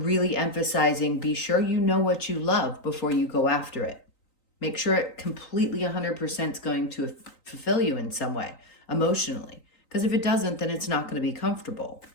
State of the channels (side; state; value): right; late; 3.9 ms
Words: emphasizing, be sure you know what you love before you go after it. Make sure it completely 100% is going to fulfill you in some way, emotionally. Because if it doesn't, then it's not going to be comfortable,